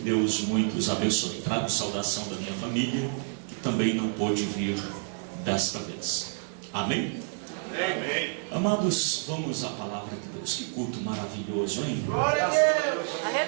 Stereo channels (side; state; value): left; silent; 59 dB below the other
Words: Deus muito os abençoe. Trago saudação da minha família, que também não pôde vir desta vez. Amém? Amém. Amados, vamos à palavra de Deus. Que culto maravilhoso, hein? Graças a Deus.